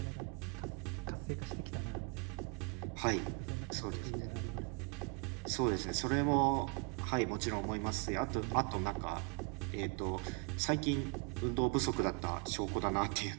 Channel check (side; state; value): left; quieter; 32.4 dB